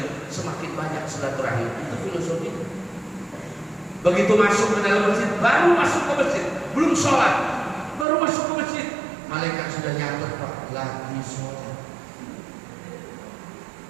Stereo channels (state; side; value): drops out; left; at 8.1 s